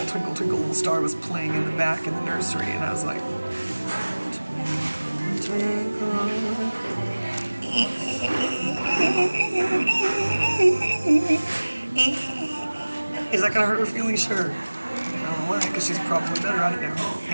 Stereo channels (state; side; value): inverted; both; correlation -1.00